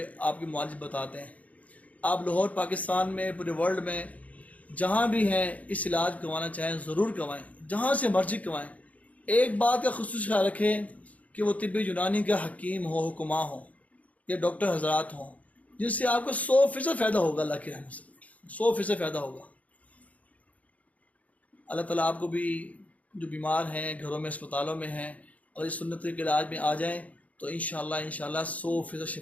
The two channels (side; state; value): right; late; 0.070 ms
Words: کے معالج بتاتے ہیں۔ آپ لاہور پاکستان میں، پورے ورلڈ میں جہاں بھی ہیں اس علاج کروانا چاہیں ضرور کروائیں، جہاں سے مرضی کروائیں۔ ایک بات کا خصوصی خیال رکھیں کہ وہ طب یونانی کا حکیم ہو، حکماں ہوں یا ڈاکٹر حضرات ہوں، جن سے آپ کو 100% فائدہ ہوگا اللہ کی رحمت سے، 100% فائدہ ہوگا۔ اللہ تعالیٰ آپ کو بھی جو بیمار ہیں، گھروں میں، اسپتالوں میں ہیں، اور اس سنت کے علاج میں آ جائیں تو انشاءاللہ 100%